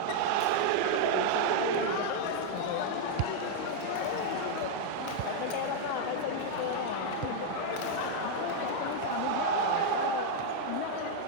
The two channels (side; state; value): both; different; correlation 0.00